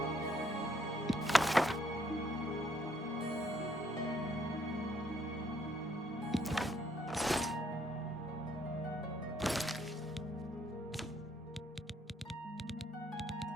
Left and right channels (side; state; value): both; normal; correlation 0.69